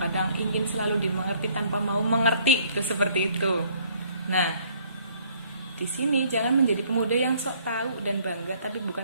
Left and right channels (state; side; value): inverted; both; correlation -0.61